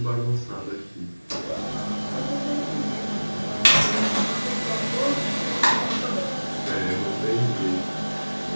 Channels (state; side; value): inverted; both; correlation -1.00